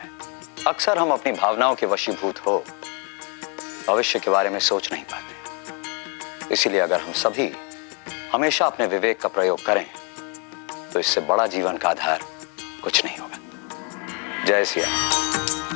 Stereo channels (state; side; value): quieter; right; 35.9 dB